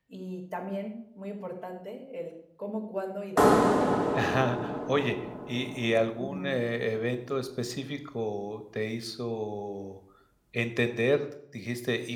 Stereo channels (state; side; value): identical; both; correlation 1.00